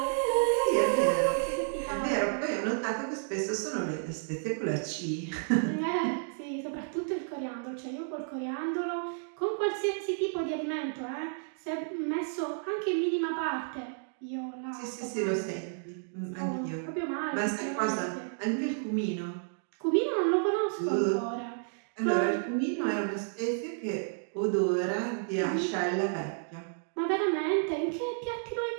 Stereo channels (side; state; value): left; silent; digital silence